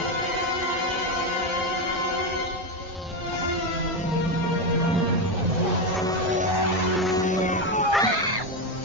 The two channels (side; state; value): both; normal; correlation 0.11